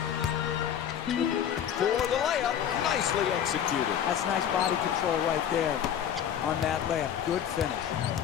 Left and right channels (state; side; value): quieter; right; 9.3 dB